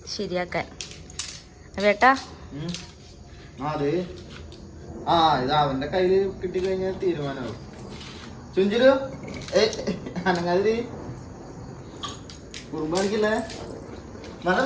ശരിയാക്കാൻ. വേട്ടാ ഇത് അവന്റെ കയ്യില് കിട്ടിക്കഴിഞ്ഞാൽ തീരുമാനമാവും. ചുഞ്ചിരു അനങ്ങാതിരി കുറുമ്പാണിക്കില്ലേ? നല്ല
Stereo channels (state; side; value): identical; both; correlation 1.00